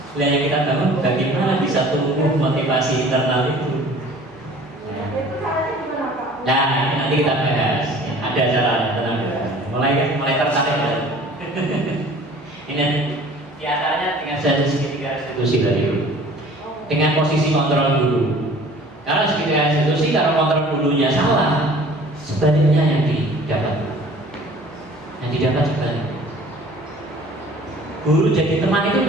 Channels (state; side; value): noise; right; hum, 30 dB below the sound